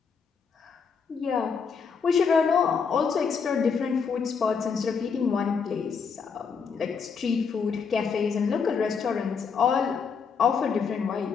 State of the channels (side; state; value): right; quieter; 5.9 dB